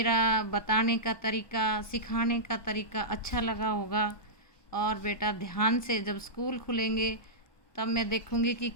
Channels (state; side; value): late; right; 1.2 ms